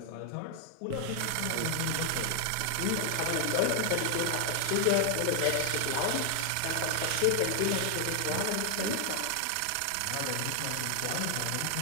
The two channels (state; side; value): different; both; correlation 0.00